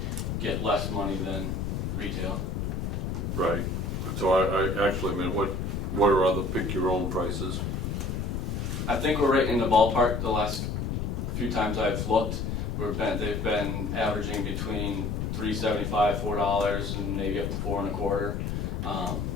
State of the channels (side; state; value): left; noise; rumble, 2 dB below the sound